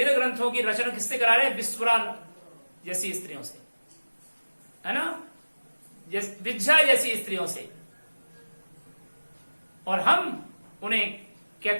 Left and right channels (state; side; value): inverted; both; correlation -1.00